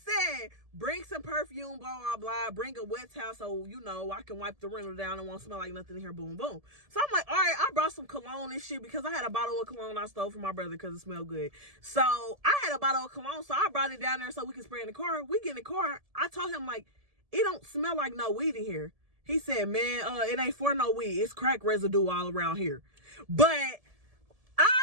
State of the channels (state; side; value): late; left; 1.7 ms